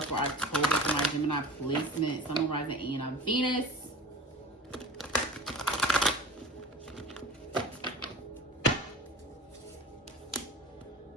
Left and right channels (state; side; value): normal; both; correlation 0.36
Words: for October for my Gemini placement? Sun, rising, and on Venus.